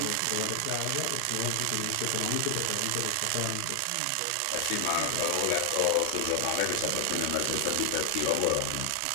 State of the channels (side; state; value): both; different; correlation 0.00